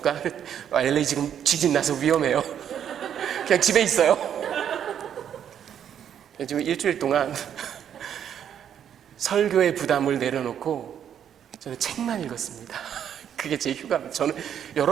LA 지금 지진 나서 위험해요. 그냥 집에 있어요. 지금 일주일 동안 설교의 부담을 내려놓고 저는 책만 읽었습니다. 그게 제 휴가입니다. 저는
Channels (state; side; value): quieter; left; 9.2 dB